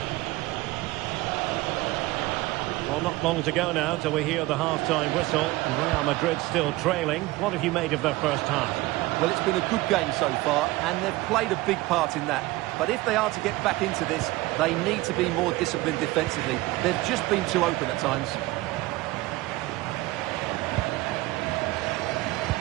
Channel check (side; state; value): left; quieter; 19.6 dB